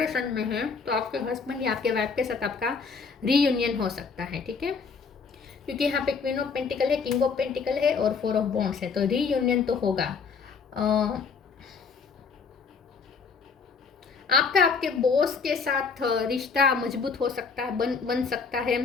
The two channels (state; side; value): quieter; right; 5.3 dB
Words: में हैं तो आपके हस्बैंड या आपके वाइफ के साथ आपका रीयूनियन हो सकता है, ठीक है। क्योंकि यहाँ पे क्वीन ऑफ पेंटिकल है, किंग ऑफ पेंटिकल है और 4 ऑफ वॉन्ड्स है, तो रीयूनियन तो होगा। आपका आपके बॉस के साथ रिश्ता मजबूत हो सकता है, बन सकता है।